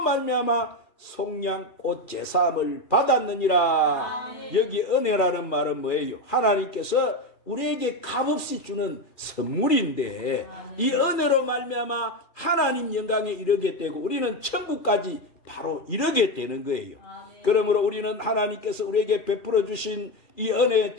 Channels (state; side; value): late; right; 2.4 ms